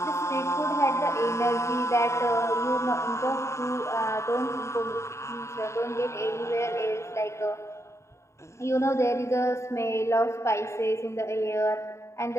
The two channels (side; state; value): right; late; 0.14 ms